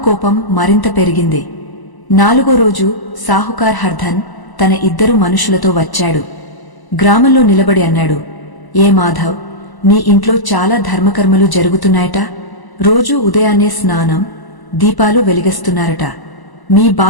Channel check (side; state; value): right; late; 1.0 ms